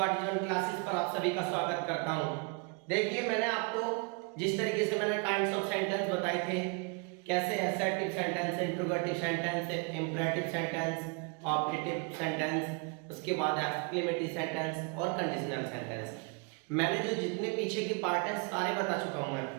क्लासेस पर आप सभी का स्वागत करता हूं। देखिए, मैंने आपको जिस तरीके से मैंने काइंड्स ऑफ सेंटेंस बताए थे, कैसे assertive sentence, interrogative sentence, imperative sentence, objective sentence, उसके बाद एक्सक्लेमेटरी सेंटेंस और कंडीशनल सेंटेंस, मैंने जो जितने पीछे की पार्ट है सारे बता चुका हूं। मैं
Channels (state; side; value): quieter; left; 33.1 dB